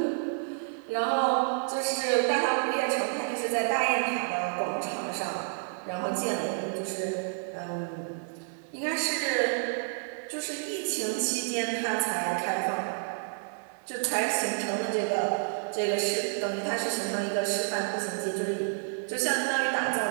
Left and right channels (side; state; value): left; silent; digital silence